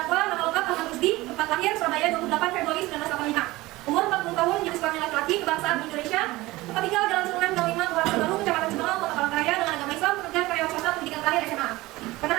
nama lengkap Ahmad Rusdi, tempat lahir Surabaya 28 Februari 1985. Umur 40 tahun, jenis kelamin laki-laki, kebangsaan Indonesia. Tempat tinggal Jalan Sungai 05, Kelurahan Baru, Kecamatan Cibinong, Kota Palangkaraya, dengan agama Islam, pekerjaan karyawan swasta, pendidikan terakhir SMA.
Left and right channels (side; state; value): left; quieter; 19.5 dB